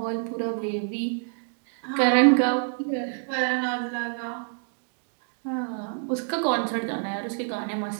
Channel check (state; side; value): silent; left; 60 dB below the other